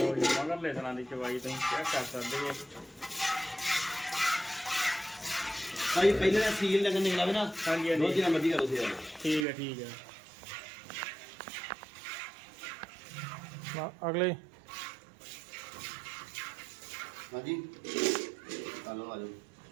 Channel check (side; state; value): left; drops out; at 9.5 s